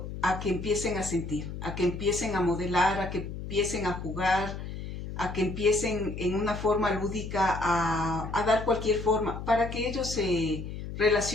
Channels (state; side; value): noise; left; hum, 8 dB below the sound